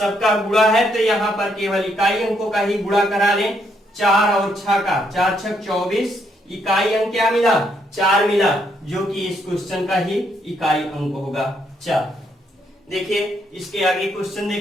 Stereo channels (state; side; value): normal; both; correlation 0.74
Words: गुणा है तो यहाँ पर केवल इकाई अंकों का ही गुणा करा लें। 4 और 6 का 4 6 24, इकाई अंक क्या मिला? 4 मिला, जो कि इस क्वेश्चन का ही इकाई अंक होगा 4। देखिए इसके आगे क्वेश्चन